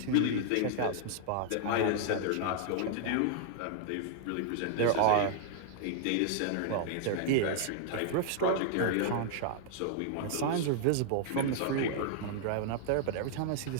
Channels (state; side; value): different; both; correlation -0.01